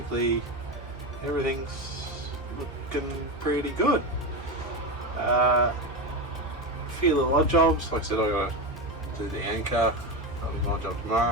everything's looking pretty good. A few little odd jobs. Like I said, I got to do the anchor. That'll be my job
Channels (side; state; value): both; normal; correlation 0.17